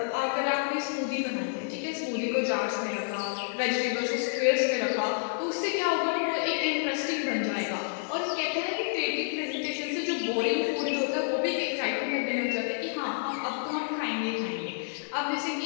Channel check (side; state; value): right; silent; digital silence